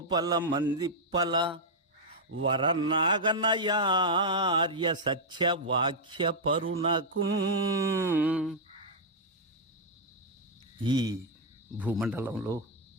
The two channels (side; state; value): both; normal; correlation -0.04